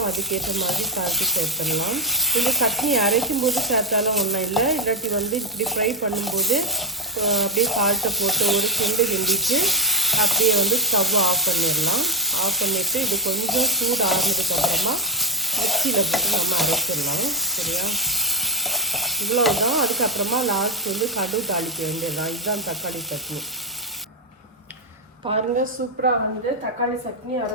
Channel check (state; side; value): normal; both; correlation 0.11